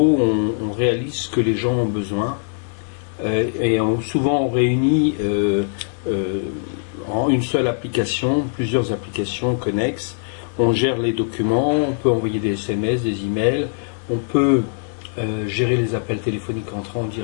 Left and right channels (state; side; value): silent; right; 65 dB below the other